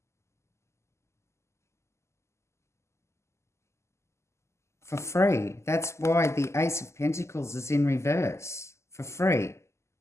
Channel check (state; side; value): late; right; 0.13 ms